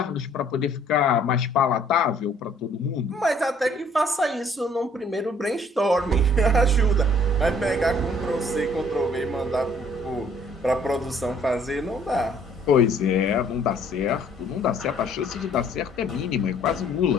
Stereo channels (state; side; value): normal; both; correlation 0.60